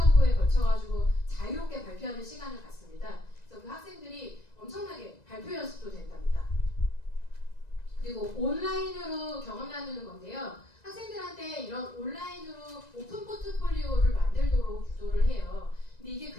걸쳐가지고 자유롭게 발표하는 시간을 갖습니다. 그래서 그 학생들이 엄청나게 발표 연습도 된답니다. 그리고 온라인으로 경험 나누는 건데요. 학생들한테 이런 온라인으로 오픈 포트폴리오를 만들도록 유도를 해요. 근데 이게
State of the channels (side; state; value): right; late; 1.9 ms